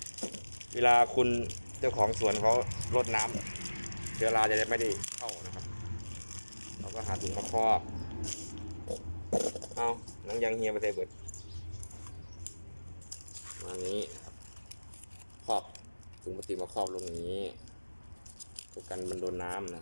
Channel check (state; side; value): inverted; both; correlation -1.00